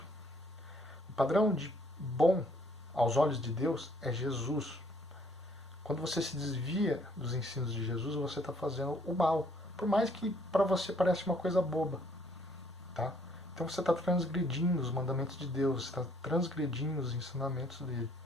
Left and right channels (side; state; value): both; normal; correlation 0.64